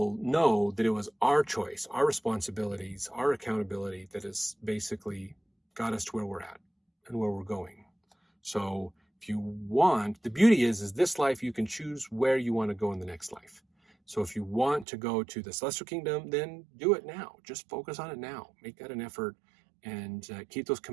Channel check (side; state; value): left; drops out; at 14.9 s